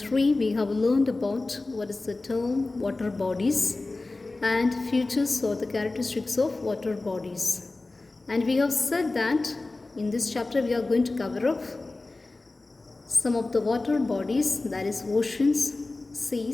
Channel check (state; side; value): quieter; right; 3.2 dB